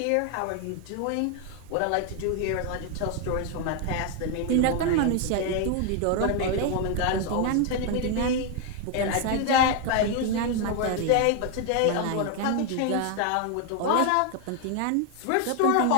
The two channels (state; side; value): different; both; correlation 0.01